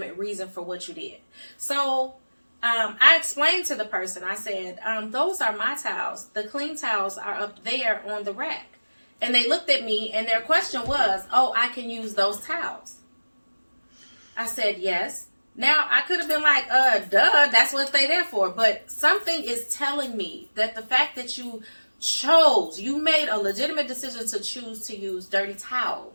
reason for what you did. So I explained to the person, I said, those are my towels. The clean towels are up there on the rack. And they looked at me and their question was, oh, I can use those towels. I said, yes. Now, I could have been like, duh, that's what they're there for. But something is telling me that the fact that you made a legitimate decision to choose to use dirty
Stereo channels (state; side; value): inverted; both; correlation -1.00